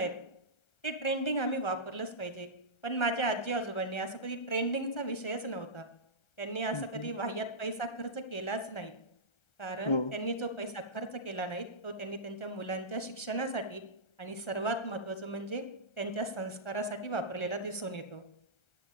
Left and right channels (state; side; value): late; right; 1.3 ms